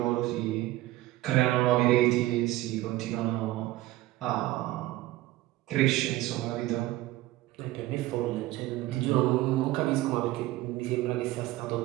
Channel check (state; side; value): quieter; left; 17.0 dB